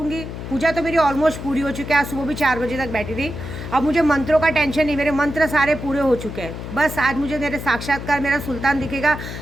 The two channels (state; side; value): noise; left; hum, 9 dB below the sound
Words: पूजा तो मेरी ऑलमोस्ट पूरी हो चुकी है, आज सुबह भी 4 बजे तक बैठी थी। अब मुझे मंत्रों का टेंशन नहीं, मेरे मंत्र सारे पूरे हो चुके हैं। बस आज मुझे मेरे साक्षात्कार मेरा सुल्तान दिखेगा।